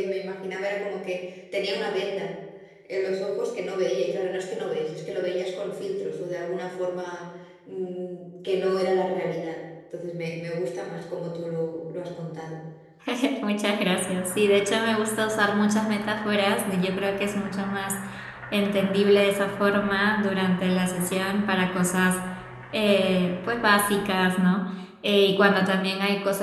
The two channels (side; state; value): both; identical; correlation 1.00